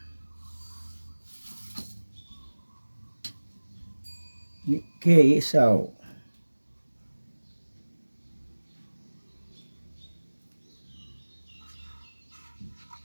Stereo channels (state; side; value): inverted; both; correlation -1.00